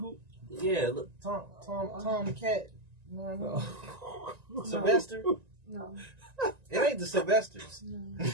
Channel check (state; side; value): late; left; 1.9 ms